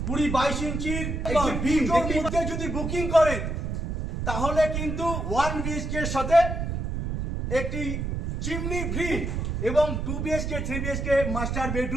20-22 ইঞ্চির বিম মধ্যে যদি বুকিং করেন, তাহলে কিন্তু 1 বিএইচকে সাথে একটি চিমনি ফ্রি, এবং 2 বিএইচকে 3 বিএইচকে মাস্টার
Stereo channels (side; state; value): right; noise; rumble, 3 dB below the sound